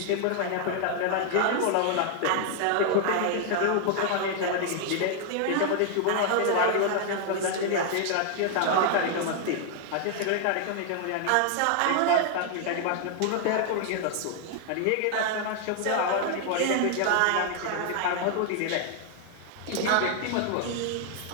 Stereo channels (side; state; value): both; different; correlation 0.00